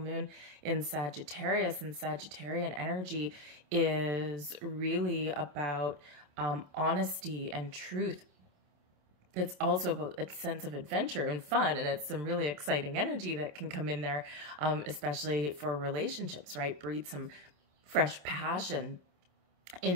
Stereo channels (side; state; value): left; late; 27 ms